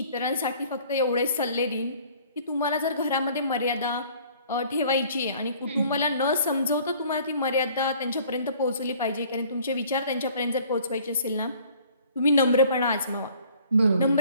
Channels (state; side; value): inverted; both; correlation -0.54